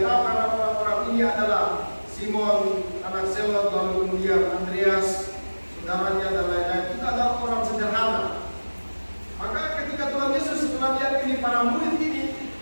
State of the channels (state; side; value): inverted; both; correlation -1.00